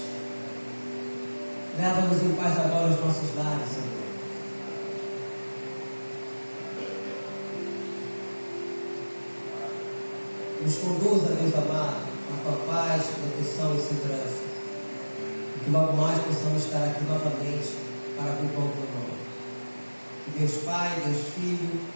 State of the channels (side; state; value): both; inverted; correlation -1.00